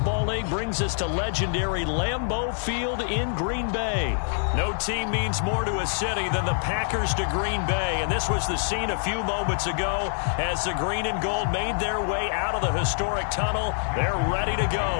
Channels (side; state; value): right; silent; digital silence